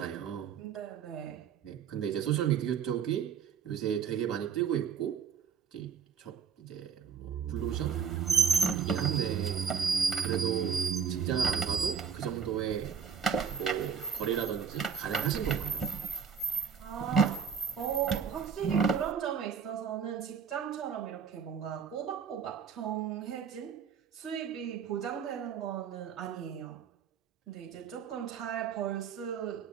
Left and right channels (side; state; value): left; quieter; 7.0 dB